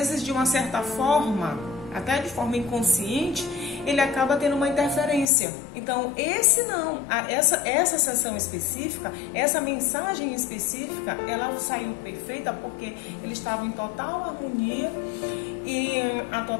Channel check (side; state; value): right; drops out; at 5.2 s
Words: de uma certa forma, até de forma inconsciente, ele acaba tendo uma interferência. Então essa sessão específica, essa mensagem específica, ela saiu perfeita porque ele estava em total harmonia e a